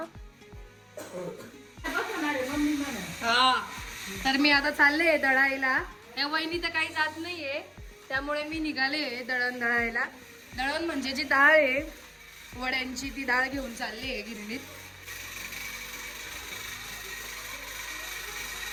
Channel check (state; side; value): identical; both; correlation 1.00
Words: हा तर मी आता चालले दळायला. या वहिनी तर काही जात नाहीये, त्यामुळे मी निघाले दळण दळायला. दळण म्हणजे जी डाळ आहे वड्यांची, ती डाळ घेऊन चालली आहे गिरणीत.